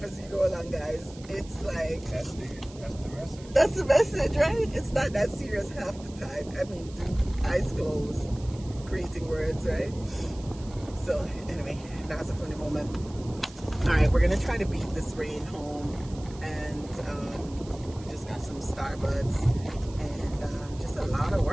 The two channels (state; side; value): noise; right; hiss, 21 dB below the sound